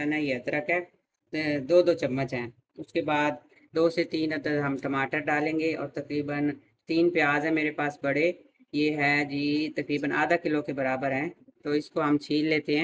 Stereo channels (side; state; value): both; identical; correlation 1.00